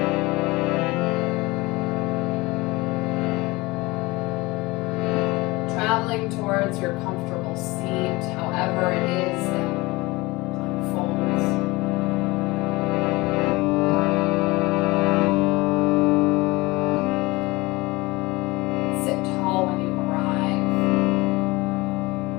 Traveling towards your comfortable seat, however it is that unfolds. Sit tall when you arrive.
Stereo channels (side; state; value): right; quieter; 22.3 dB